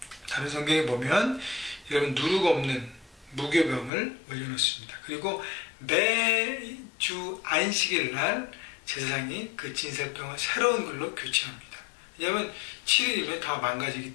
다른 성경에 보면 여러분 누룩 없는 무교병을 올려놓습니다. 그리고 매주 안식일 날 제사장이 그 진설병을 새로운 걸로 교체합니다. 왜냐하면 7일이면 다 망가지기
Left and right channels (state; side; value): drops out; right; at 3.9 s